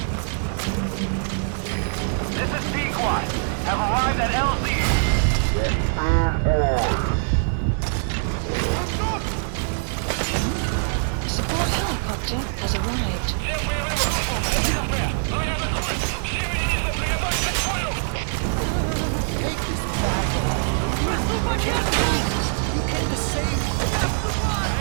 This is B-Quad. Have arrived at LZ. Support helicopter has arrived. Take this bag off, will you? I can't breathe. You came to save me, right?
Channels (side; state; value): left; silent; digital silence